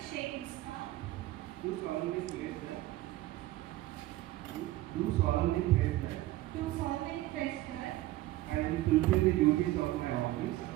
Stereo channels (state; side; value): quieter; left; 16.7 dB